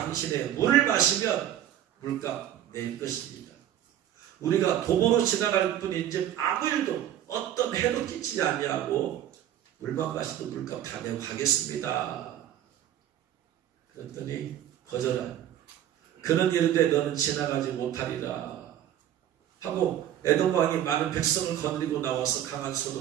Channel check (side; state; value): left; quieter; 11.3 dB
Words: 물을 마시면 물값 낼 것입니다. 우리가 도보로 지나갈 뿐인지 아무 일도 어떤 해도 끼치지 아니하고 물만 마시도 물값 다 내고 가겠습니다. 그랬더니 거절한. 그는 이르되 너는 지나가지 못하리라 하고 에돔 왕이 많은 백성을 거느리고 나와서 강한